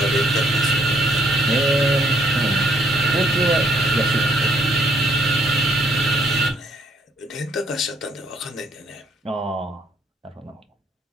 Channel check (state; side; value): normal; both; correlation 0.67